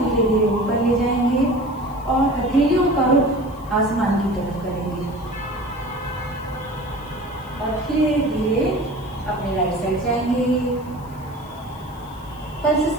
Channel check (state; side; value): noise; left; hiss, 26 dB below the sound